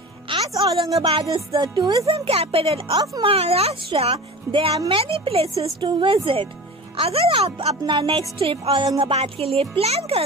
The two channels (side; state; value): both; normal; correlation 0.34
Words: As Aurangabad is the tourism capital of Maharashtra, there are many places to visit. अगर आप अपना नेक्स्ट ट्रिप औरंगाबाद के लिए प्लान